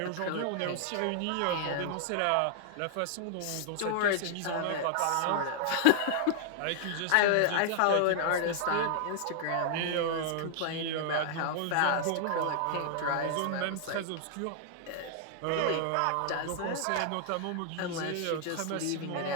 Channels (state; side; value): different; both; correlation -0.01